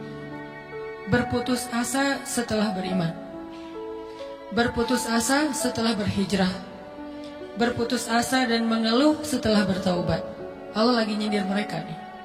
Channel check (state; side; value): identical; both; correlation 1.00